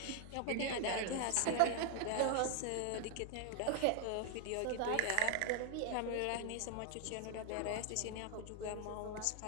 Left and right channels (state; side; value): different; both; correlation 0.01